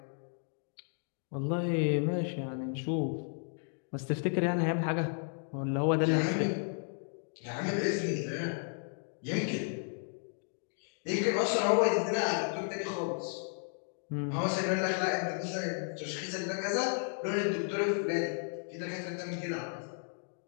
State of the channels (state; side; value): silent; right; 55 dB below the other